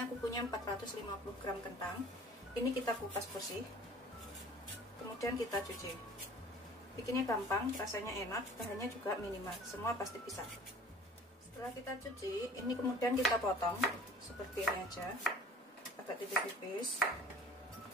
aku punya 450 gram kentang. Ini kita kupas bersih, kemudian kita cuci. Bikinnya gampang, rasanya enak, bahannya juga minimal, semua pasti bisa. Setelah kita cuci, ini kemudian kita potong seperti ini aja, agak tipis-tipis.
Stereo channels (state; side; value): normal; both; correlation 0.47